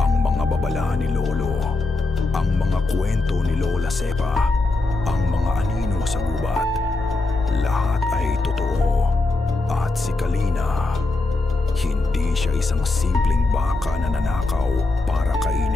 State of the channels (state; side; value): quieter; right; 3.2 dB